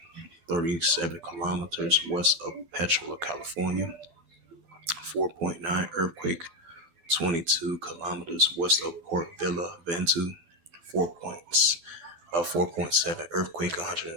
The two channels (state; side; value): late; left; 12 ms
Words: 37 kilometers west of Petrola, California. 4.9 earthquake, 22 kilometers west of Port Vila, Ventu. 4.7 earthquake,